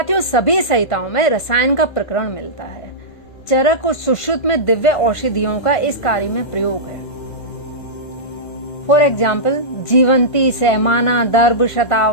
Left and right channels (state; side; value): late; right; 1.5 ms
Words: सभी संहिताओं में रसायन का प्रकरण मिलता है। चरक और सुश्रुत में दिव्य औषधियों का इस कार्य में प्रयोग है। फॉर एग्जाम्पल, जीवंती, सहमाना, दर्भ,